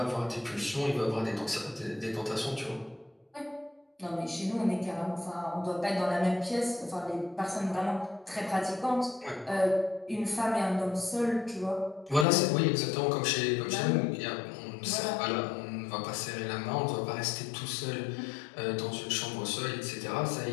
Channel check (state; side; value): drops out; right; at 12.2 s